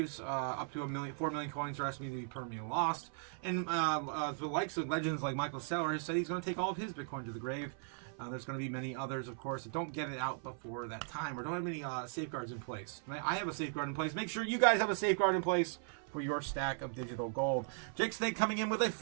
Up to 4 million coins are estimated to be permanently lost. And the likes of legends like Michael Saylor said he's going to take all of his Bitcoin to the grave. There's going to be many others, of course, that don't get it out before that time or don't have any safeguards in place. I have a safeguard in place. Make sure you guys have a safeguard in place for your stack of digital gold. Jake Snake coming in with a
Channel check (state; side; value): silent; left; 53 dB below the other